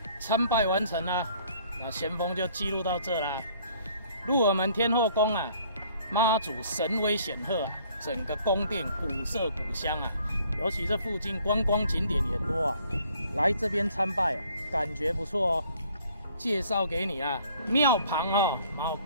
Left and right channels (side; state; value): both; inverted; correlation -0.59